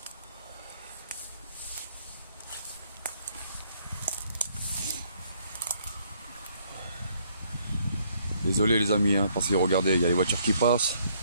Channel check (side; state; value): both; inverted; correlation -0.68